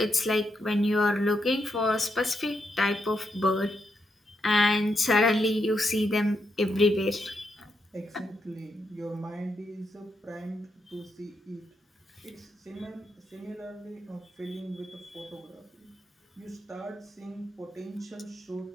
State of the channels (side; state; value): both; normal; correlation 0.82